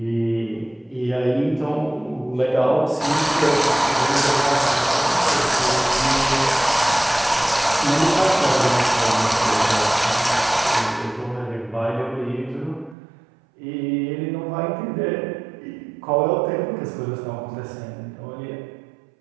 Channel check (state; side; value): drops out; left; at 13.0 s